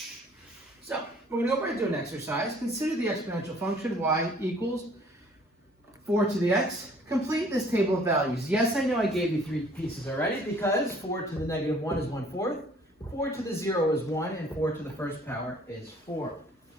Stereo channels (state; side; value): normal; both; correlation 0.56